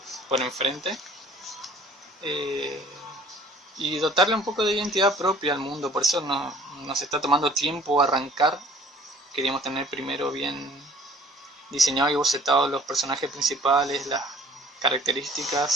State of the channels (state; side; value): normal; both; correlation 0.53